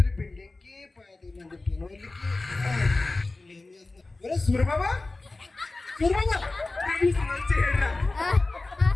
బిల్డింగ్కి 10 మంది పిల్లలకి ఏం చేస్తున్నారు? సూర్యబాబా సూర్యబాబా చేయరా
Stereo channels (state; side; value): quieter; right; 3.2 dB